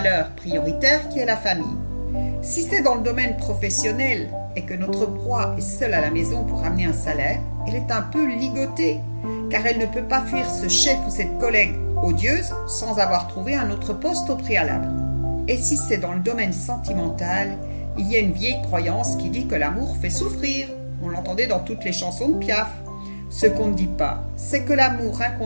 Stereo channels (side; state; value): both; inverted; correlation -1.00